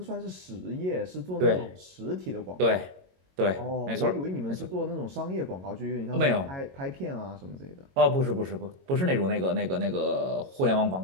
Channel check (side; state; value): left; late; 22 ms